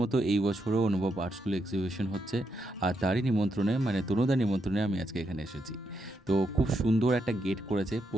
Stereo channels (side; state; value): both; normal; correlation 0.81